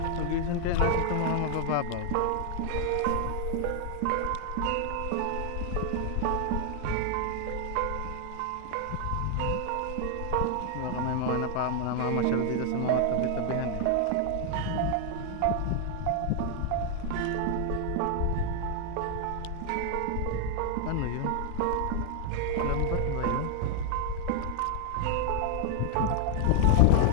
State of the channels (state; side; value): different; both; correlation 0.00